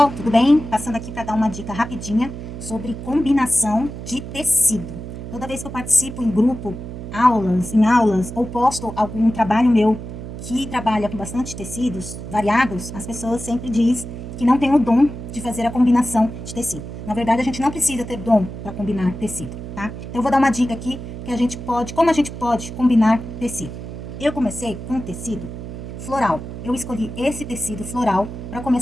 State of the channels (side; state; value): right; noise; hum, 9 dB below the sound